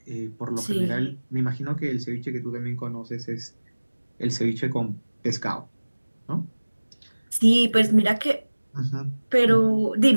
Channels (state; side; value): inverted; both; correlation -1.00